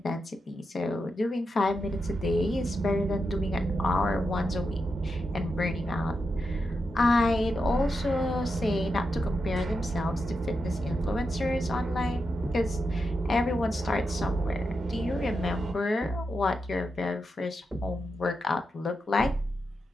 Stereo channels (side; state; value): both; normal; correlation 0.86